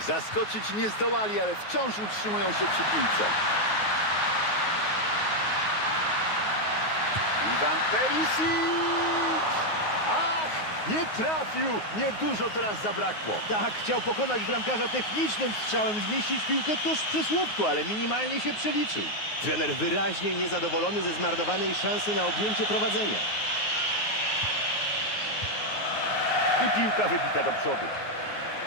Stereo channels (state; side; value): late; right; 9.5 ms